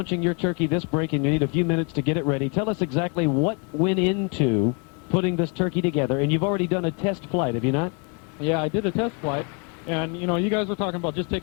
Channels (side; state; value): right; quieter; 35.1 dB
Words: your turkey this break, and you need a few minutes to get it ready. Tell us exactly what went into putting this turkey together, and you've already done a test flight, have you not? Yeah, I did a test flight, and, you guys were talking about just